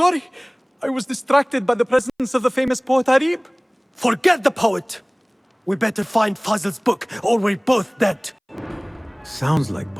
I was distracted by the presence of the famous poet Arib. Forget the poet! We better find Fazil's book, or we're both dead. Sounds like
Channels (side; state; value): both; identical; correlation 1.00